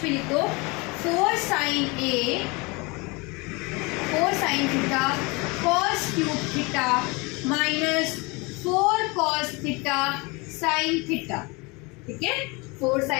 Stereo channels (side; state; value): right; quieter; 26.9 dB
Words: भी लिख दो, 4 sine a 4 sine theta cos cube theta minus 4 cos theta sine theta, ठीक है। 4